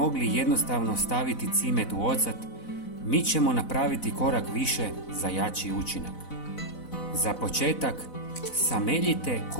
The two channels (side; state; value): right; late; 4.0 ms